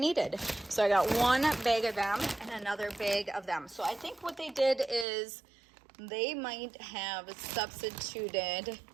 So I got 1 bag of them and another bag of them. So I think what they did is they might have substituted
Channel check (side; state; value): left; drops out; at 5.1 s